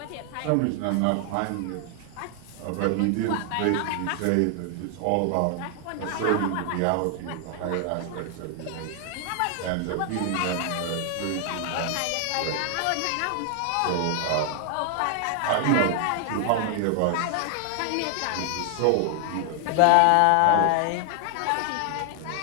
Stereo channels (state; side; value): different; both; correlation 0.00